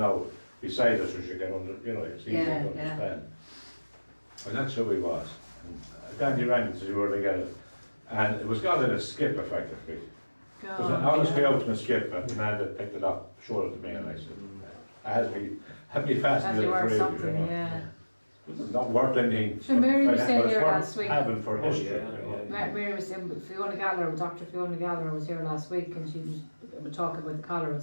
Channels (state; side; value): inverted; both; correlation -1.00